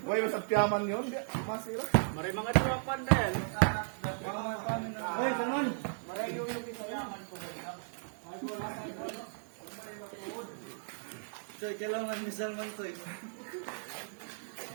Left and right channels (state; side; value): silent; left; 54 dB below the other